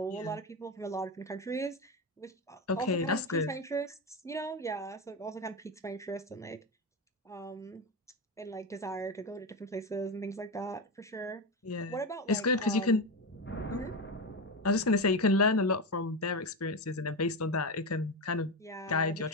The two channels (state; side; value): normal; both; correlation 0.15